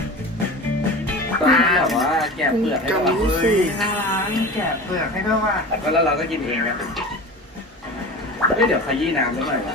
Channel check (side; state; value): both; normal; correlation 0.33